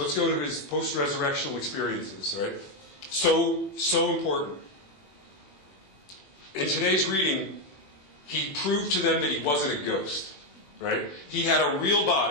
go to his post-resurrectional experiences, right? So important. In today's reading, he proved to them that he wasn't a ghost, right? He had a real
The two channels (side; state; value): right; late; 21 ms